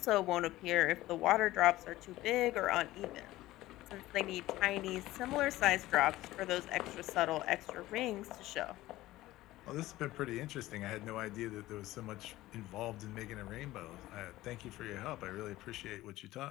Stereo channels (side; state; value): right; quieter; 16.7 dB